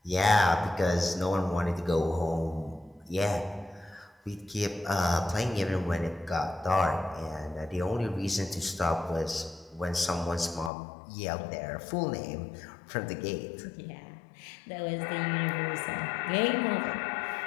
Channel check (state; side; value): drops out; right; at 10.7 s